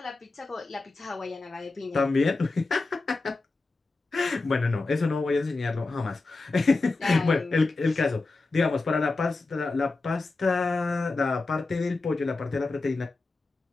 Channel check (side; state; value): right; quieter; 3.5 dB